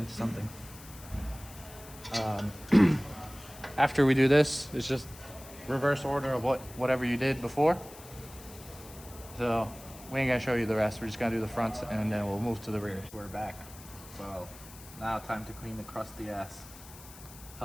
something. After we do this, it's just reverse order of whatever you did before. So we ain't gonna show you the rest. We're just gonna do the fronts and then we'll move to the rear. We're back. So now time to clean the crusty ass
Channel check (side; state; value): left; noise; hiss, 18 dB below the sound